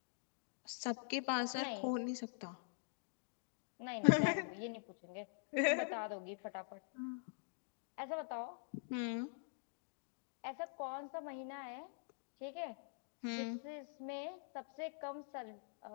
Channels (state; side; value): silent; right; digital silence